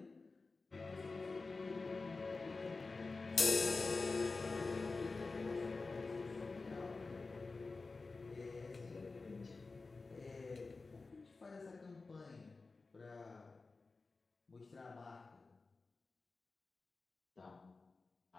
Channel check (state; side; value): quieter; right; 3.9 dB